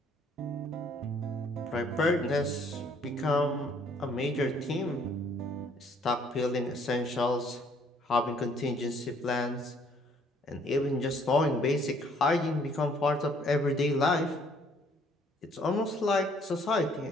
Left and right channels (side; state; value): both; normal; correlation 0.62